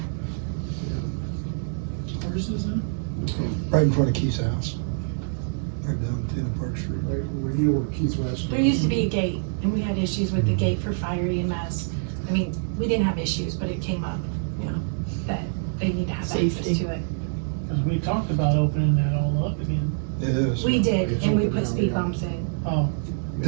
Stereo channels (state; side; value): silent; left; digital silence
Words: Where's this in? Right in front of Keith's house. Right down at the end of Park Street. Right, where you were Keith West. There used to be a gate, and we had issues with the gate for fire EMS. I mean, we didn't have issues, but it came up, that they need to have access Safety. to it. Because we talked about opening that all up again. It is. We did, It's and we open put now, speed yeah. bumps in. Oh,